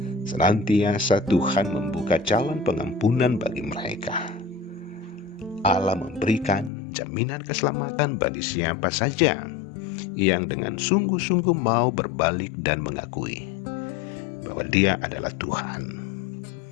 senantiasa Tuhan membuka jalan pengampunan bagi mereka. Allah memberikan jaminan keselamatan bagi siapa saja yang dengan sungguh-sungguh mau berbalik dan mengakui bahwa Dia adalah Tuhan.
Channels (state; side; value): drops out; right; at 6.7 s